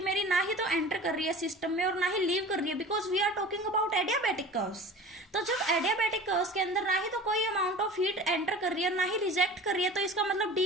मेरी ना ही तो एंटर कर रही है सिस्टम में और ना ही लीव कर रही है, because we are talking about adiabatic curves. तो जब एडियाबैटिक कर्व्स के अंदर ना ही तो कोई अमाउंट ऑफ हीट एंटर कर रही है और ना ही रिजेक्ट कर रही है, तो इसका मतलब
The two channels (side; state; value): both; normal; correlation 0.39